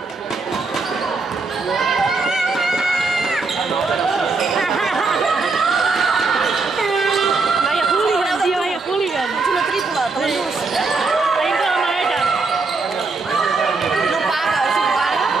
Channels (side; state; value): left; quieter; 4.0 dB